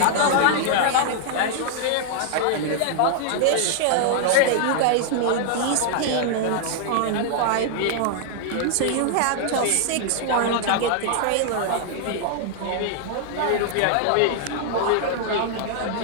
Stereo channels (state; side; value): different; both; correlation -0.01